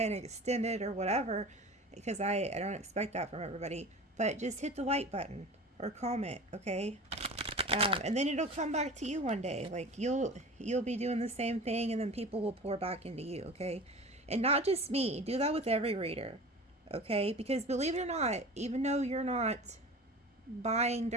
extended or whatever, because I don't expect that from everybody, but just hit the like button or comment, okay? And then it'll come back to you one day. Like you'll be doing the same thing, and then people will pour back into you, okay? And not just me. Do that with every reader, okay? Because believe it or not, even though you're not buying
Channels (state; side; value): normal; both; correlation 0.36